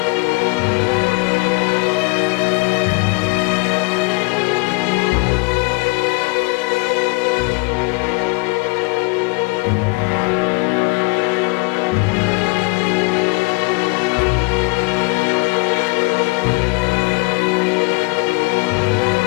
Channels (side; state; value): right; quieter; 27.1 dB